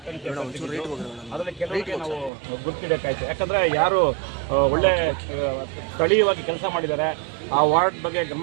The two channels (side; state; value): left; drops out; at 2.3 s